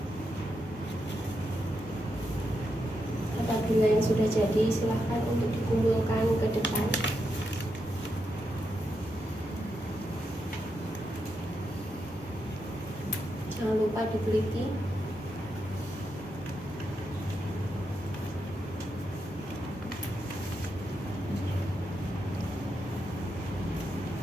Apabila yang sudah jadi, silahkan untuk dikumpulkan ke depan. Jangan lupa diteliti.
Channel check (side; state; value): both; normal; correlation 0.84